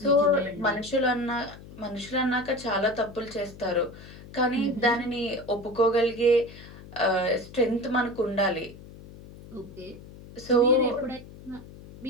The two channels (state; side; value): noise; left; hum, 17 dB below the sound